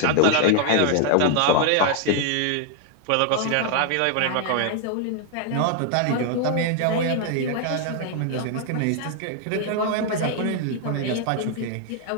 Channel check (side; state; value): both; different; correlation 0.00